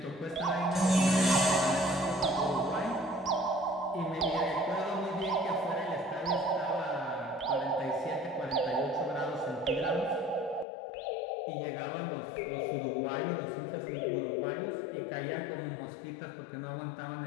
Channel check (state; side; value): drops out; right; at 10.7 s